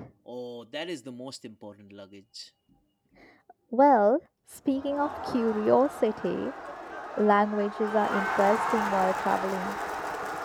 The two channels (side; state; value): both; identical; correlation 1.00